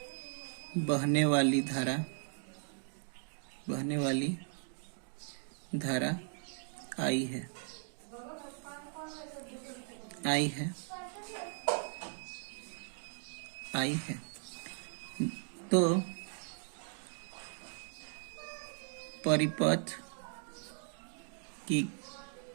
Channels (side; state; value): left; silent; 53 dB below the other